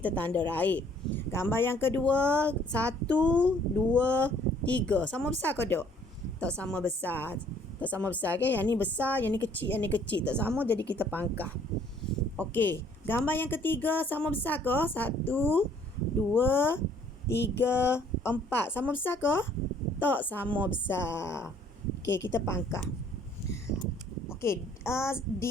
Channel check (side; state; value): both; normal; correlation 0.60